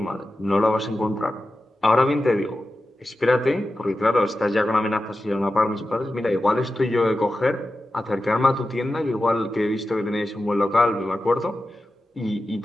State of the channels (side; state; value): both; normal; correlation 0.92